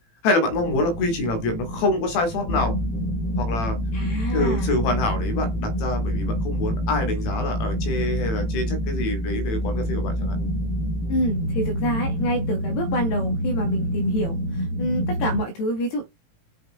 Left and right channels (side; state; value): right; late; 18 ms